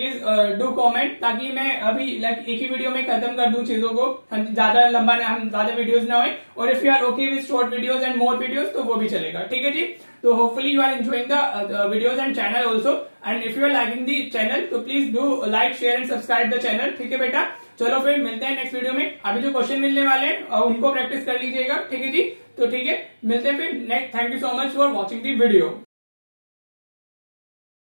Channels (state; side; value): inverted; both; correlation -1.00